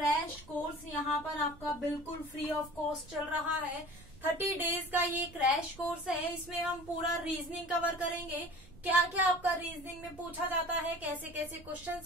कोर्स यहाँ पर आपका बिल्कुल फ्री ऑफ कॉस्ट चल रहा है। 30 डेज का ये क्रैश कोर्स है। इसमें हम पूरा रीजनिंग कवर करेंगे, क्या क्या आपका रीजनिंग में पूछा जाता है, कैसे कैसे क्वेश्चंस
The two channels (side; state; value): right; noise; rumble, 21 dB below the sound